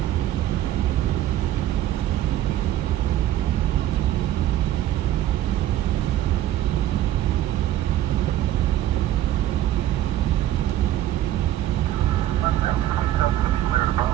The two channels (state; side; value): quieter; left; 13.0 dB